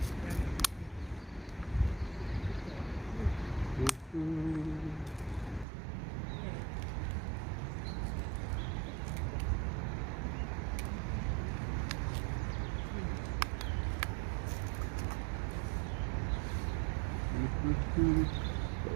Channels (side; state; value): left; drops out; at 5.7 s